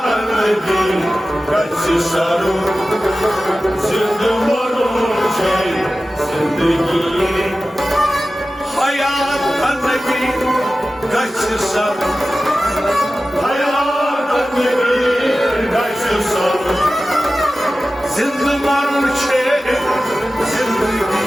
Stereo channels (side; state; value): both; normal; correlation 0.95